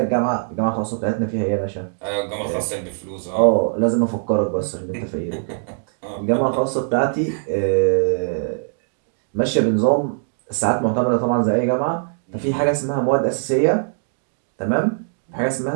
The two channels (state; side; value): silent; left; digital silence